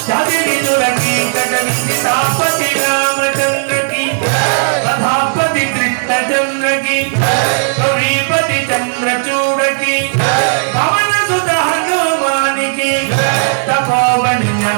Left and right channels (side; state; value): left; silent; digital silence